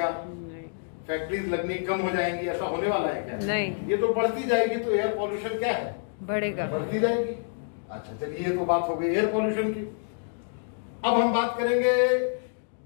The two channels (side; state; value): right; silent; digital silence